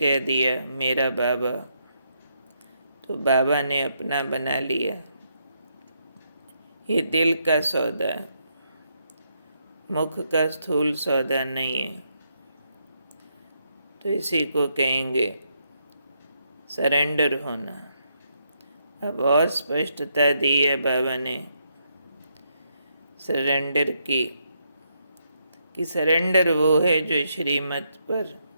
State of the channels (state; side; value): inverted; both; correlation -0.77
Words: दिया मेरा बाबा, तो बाबा ने अपना बना लिया। ये दिल का सौदा है, मुख का स्थूल सौदा नहीं है। तो इसी को कहेंगे सरेंडर होना। अब और स्पष्टता दी है बाबा ने सरेंडर की, कि सरेंडर वो है जो श्रीमत पर